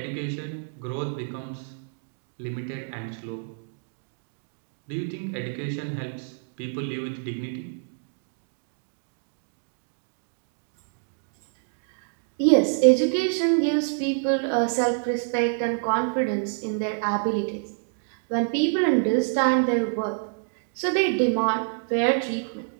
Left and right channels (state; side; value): silent; left; digital silence